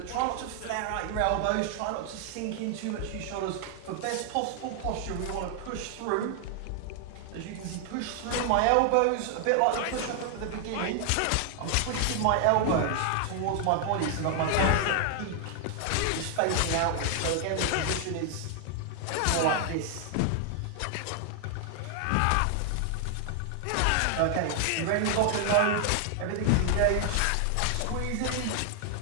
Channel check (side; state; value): both; different; correlation 0.00